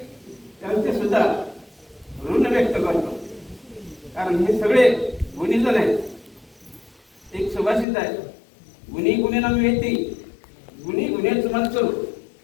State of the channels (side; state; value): right; drops out; at 7.9 s